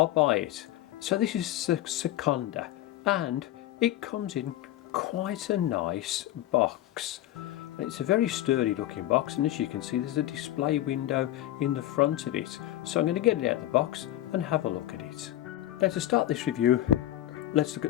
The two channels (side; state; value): right; quieter; 14.0 dB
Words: buy it. So this is Sekonda and it comes in quite a nice box. It's a very sturdy looking box, and as you can see there's a display window in the front of it. So I'm going to get it out of the box and have a look at it. Now to start this review, let's look